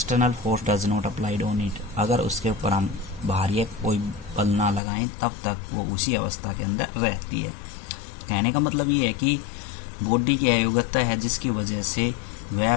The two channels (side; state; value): right; drops out; at 4.8 s